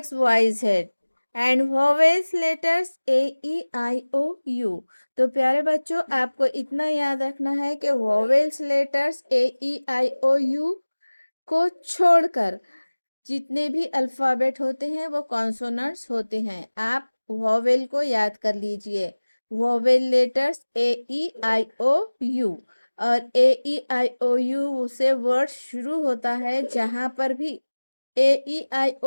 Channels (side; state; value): both; inverted; correlation -1.00